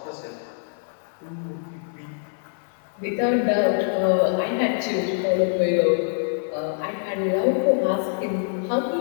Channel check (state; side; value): silent; right; 62 dB below the other